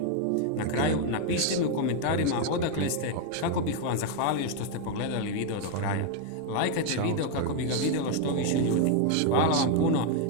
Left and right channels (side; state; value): both; different; correlation 0.01